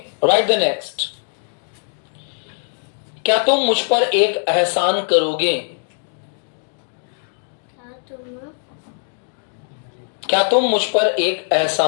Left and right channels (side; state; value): right; silent; digital silence